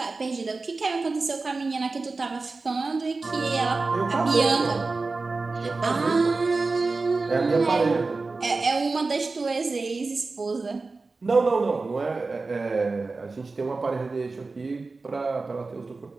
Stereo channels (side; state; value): left; quieter; 3.8 dB